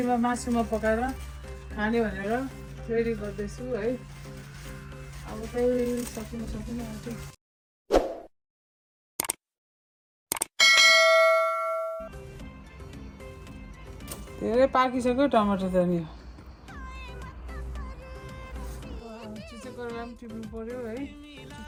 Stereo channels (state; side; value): identical; both; correlation 1.00